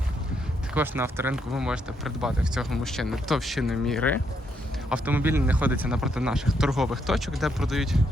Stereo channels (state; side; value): normal; both; correlation 0.76